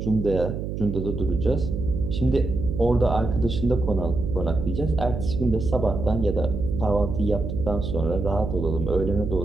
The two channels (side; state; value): right; noise; hum, 5 dB below the sound